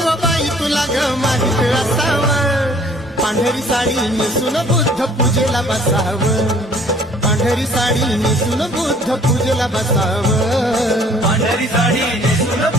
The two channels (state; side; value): normal; both; correlation 0.56